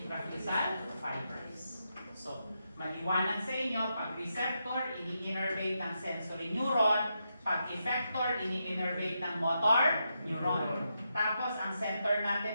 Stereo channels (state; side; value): inverted; both; correlation -0.84